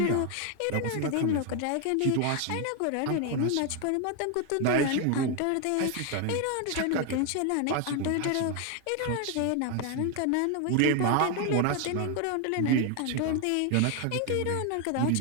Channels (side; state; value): both; different; correlation 0.01